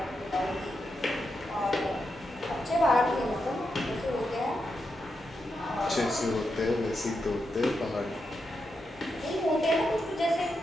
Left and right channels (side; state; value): both; normal; correlation 0.85